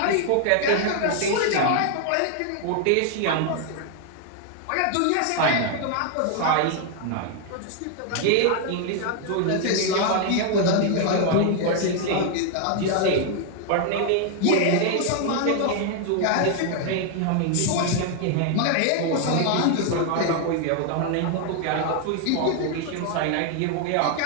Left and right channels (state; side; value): different; both; correlation 0.00